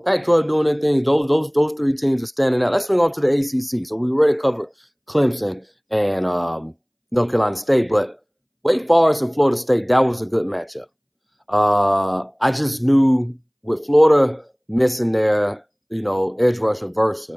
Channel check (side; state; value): both; identical; correlation 1.00